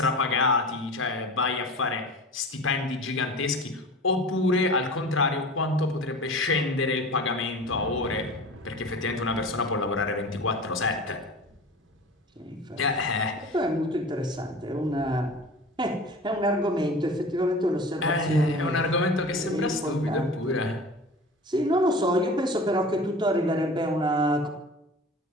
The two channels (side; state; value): both; normal; correlation 0.37